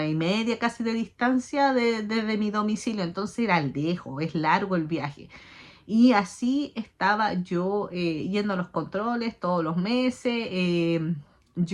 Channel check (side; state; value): both; identical; correlation 1.00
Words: y media casi de distancia desde mi domicilio, entonces era lejos, es largo el viaje. Y así estaba yo yendo a los controles todos los meses.